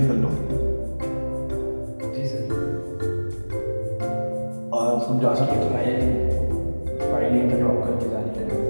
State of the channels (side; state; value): both; inverted; correlation -1.00